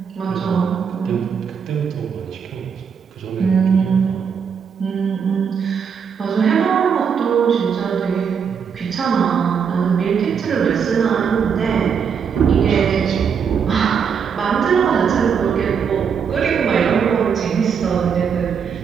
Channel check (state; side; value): quieter; left; 6.9 dB